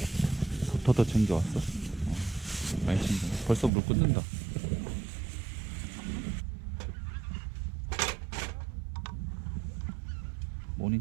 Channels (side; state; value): left; drops out; at 3.7 s